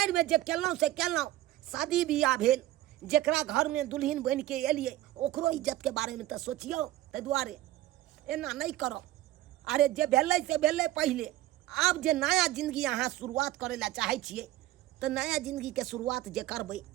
में जे केलौं से केलौं, शादी बियाह भेल, जेकरा घर में दुल्हन बन के एलिए ओकरो इज्जत के बारे में तो सोचियो, ताहि दुआरे एना नहीं करो। अरे जे भेलै से भेलै पहले, अब जे नया जिंदगी अहाँ शुरुआत करे ला चाहे छिए तो नया जिंदगी के शुरुआत जे करबै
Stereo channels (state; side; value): quieter; left; 15.2 dB